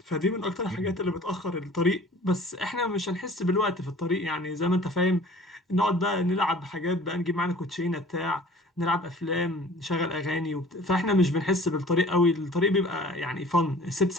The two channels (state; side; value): normal; both; correlation 0.48